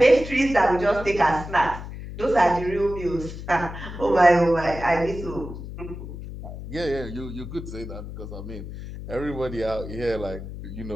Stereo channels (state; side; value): noise; left; hum, 10 dB below the sound